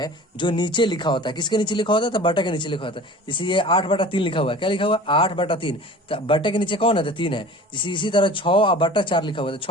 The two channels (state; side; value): normal; both; correlation 0.41